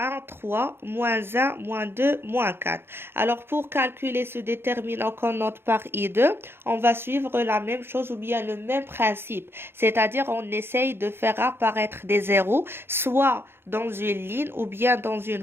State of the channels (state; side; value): late; left; 0.11 ms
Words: 3, moins 1, moins 2, moins 4. Alors, pour calculer ce déterminant qu'on note par I2, on va suivre la même chose ou bien le même principe. C'est-à-dire, on essaye de faire apparaître des zéros, soit dans une ligne ou bien dans